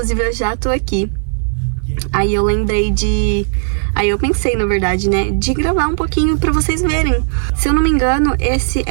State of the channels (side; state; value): left; silent; 58 dB below the other